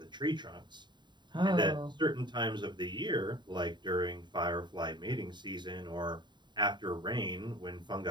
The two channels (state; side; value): late; left; 0.22 ms